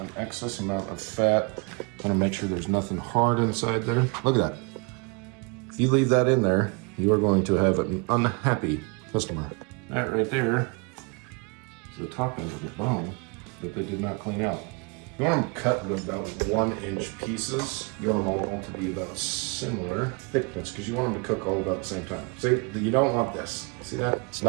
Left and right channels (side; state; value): left; quieter; 31.3 dB